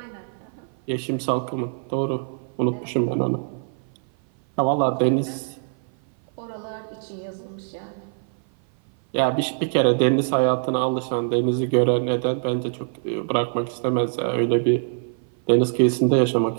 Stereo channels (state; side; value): silent; left; 56 dB below the other